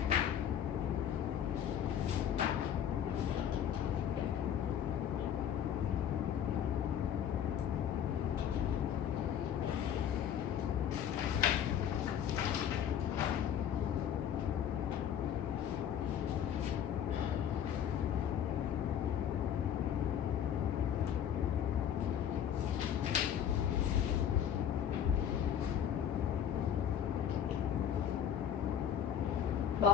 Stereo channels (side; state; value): right; quieter; 9.3 dB